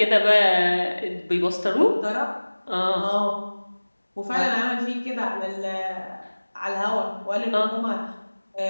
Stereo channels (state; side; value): inverted; both; correlation -1.00